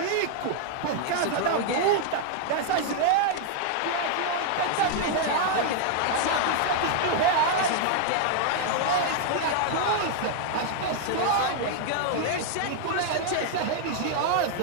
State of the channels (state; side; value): different; both; correlation 0.00